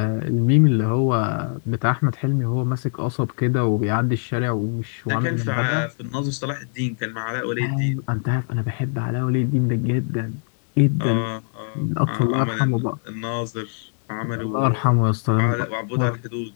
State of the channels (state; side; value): silent; right; digital silence